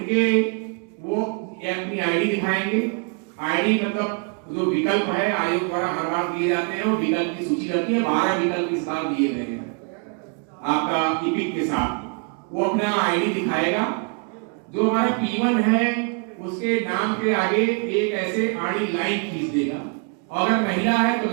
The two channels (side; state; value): left; quieter; 37.4 dB